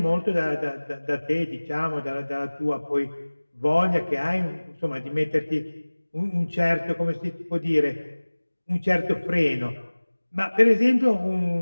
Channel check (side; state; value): both; inverted; correlation -1.00